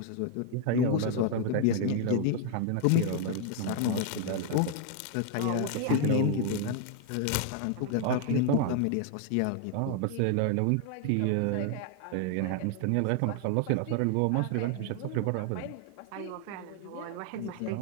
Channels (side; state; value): both; different; correlation 0.00